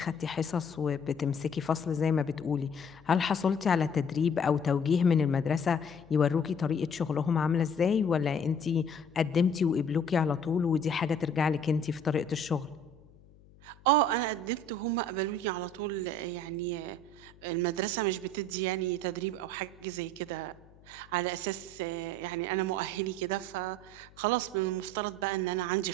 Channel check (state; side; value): noise; left; hum, 25 dB below the sound